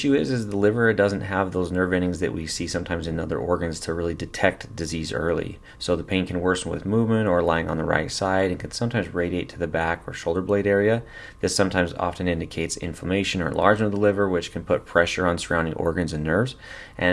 is the liver doesn't have those nerve endings that we see sometimes in other organs to really detect disease early. So the pain can worsen with movement or lying on the right side and can sometimes radiate to the back or shoulder blade area. This sometimes often indicates inflammation or enlargement of the liver, which can put pressure on surrounding organs and nerves.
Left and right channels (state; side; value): identical; both; correlation 1.00